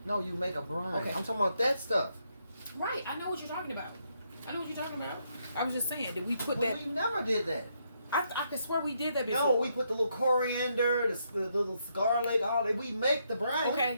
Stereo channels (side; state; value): both; inverted; correlation -0.77